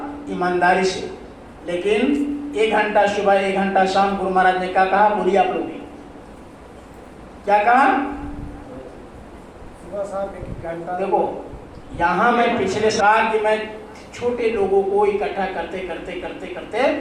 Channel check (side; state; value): both; identical; correlation 1.00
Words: ईमानदारी से। लेकिन 1 घंटा सुबह 1 घंटा शाम, गुरु महाराज ने क्या कहा, बोलिए आप लोग क्या कहा? सुबह शाम 1 घंटा। देखो यहाँ मैं पिछले साल कि मैं छोटे लोगों को इकट्ठा करते करते करते करते